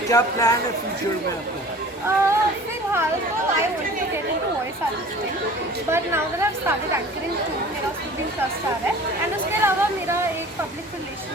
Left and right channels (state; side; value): normal; both; correlation 0.44